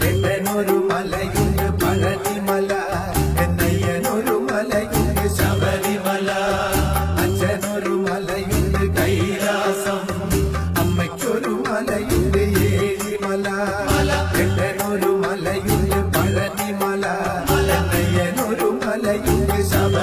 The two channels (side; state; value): both; identical; correlation 1.00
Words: എട്ടനൊരു മലയുണ്ട് പഴനിമല, എന്നയ്യനൊരു മലയുണ്ട് ശബരിമല, അച്ഛനൊരു മലയുണ്ട് കൈലാസം, അമ്മയ്ക്കൊരു മലയുണ്ട് ഏഴിമല, എട്ടനൊരു മലയുണ്ട് പഴനിമല, എന്നയ്യനൊരു മലയുണ്ട്